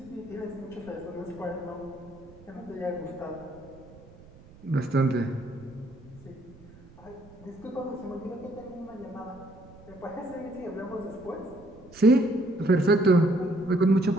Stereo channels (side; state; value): right; noise; rumble, 22 dB below the sound